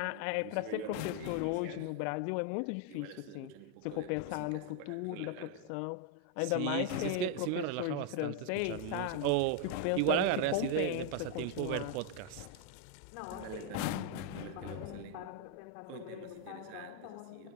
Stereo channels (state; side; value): different; both; correlation 0.00